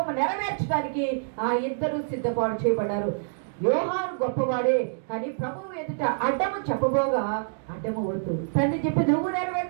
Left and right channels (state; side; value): silent; left; digital silence